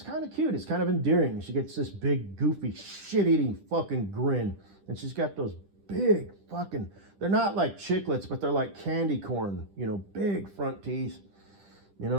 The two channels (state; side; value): late; left; 10 ms